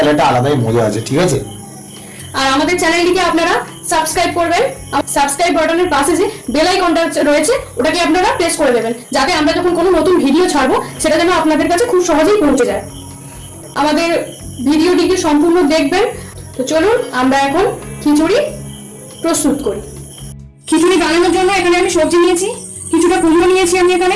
একটা আলাদাই মজা আছে, ঠিক আছে? আর আমাদের চ্যানেলটিকে আপনারা সাবস্ক্রাইব করবেন। সাবস্ক্রাইব বাটনের পাশে যে বেল আইকনটা রয়েছে ওটাকে আপনারা প্রেস করে দেবেন, যাতে আমরা যখন কোনো নতুন ভিডিও ছাড়বো সেটা যেন আপনাদের কাছে খুব সহজেই পৌঁছে যায়। আমাদের ভিডিওটিকে সম্পূর্ণ দেখবেন। তো চলুন আমরা এখন খিচুড়ি প্রস্তুত করি। খিচুড়ি বানানোর জন্য এখানে আমি সবজি নিয়েছি, কিছুটা কুমড়ো নিয়েছি, আমি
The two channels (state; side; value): identical; both; correlation 1.00